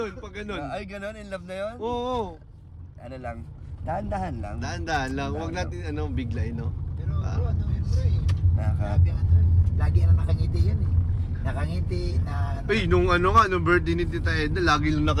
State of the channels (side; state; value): both; identical; correlation 1.00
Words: Pag ganun. Ay, ganon? In love na yun? Oo. Ano lang? Dahan-dahan lang. Dahan-dahan lang. Huwag natin biglayin, no? Pero bro, ano yun bro eh. Grabe Lagi na nakangiti yan eh. Nakangiti na... Ay, nung birthday ni Tita Edna, lagi lang